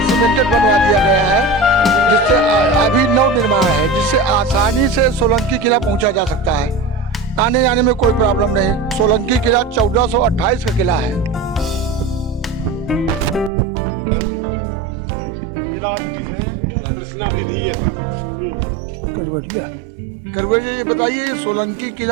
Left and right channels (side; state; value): left; drops out; at 13.5 s